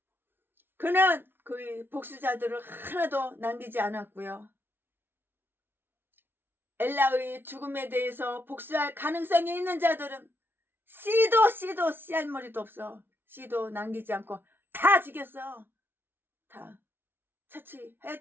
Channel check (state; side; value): late; left; 0.11 ms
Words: 그는 그의 복수자들을 하나도 남기지 않았고요. 엘라의 죽음에 대해서 복수할 가능성이 있는 자들은 씨알머리도 없어. 씨도 남기지 않고 다 죽였어. 다